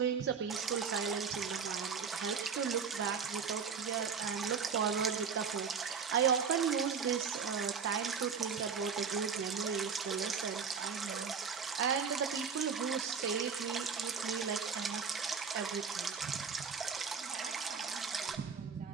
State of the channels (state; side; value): quieter; left; 6.1 dB